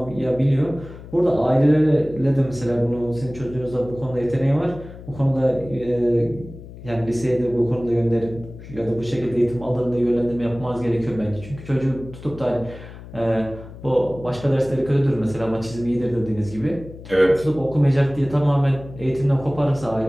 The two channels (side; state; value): left; noise; hum, 15 dB below the sound